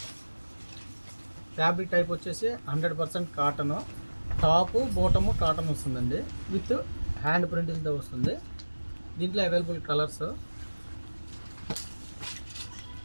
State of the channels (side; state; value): both; inverted; correlation -1.00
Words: ఫ్యాబ్రిక్ టైప్ వచ్చేసి 100% కాటను. టాపు బాటము కాటన్ వస్తుందండి, విత్ హ్యాండ్ ప్రింటింగ్తో వస్తుంది. దీంట్లో అవైలబుల్ కలర్స్